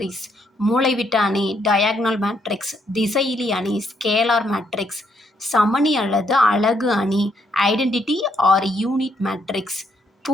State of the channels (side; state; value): both; normal; correlation 0.74